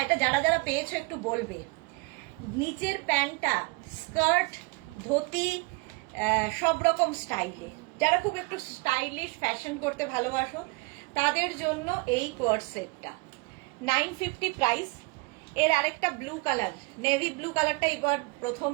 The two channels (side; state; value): left; quieter; 28.0 dB